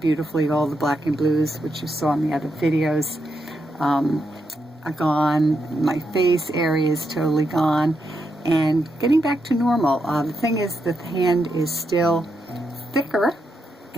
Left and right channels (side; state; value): both; normal; correlation 0.83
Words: beautifully. All the black and blues, which you saw in the other videos, are gone. My face area is totally gone and getting back to normal. The thing is that the hand is still thicker,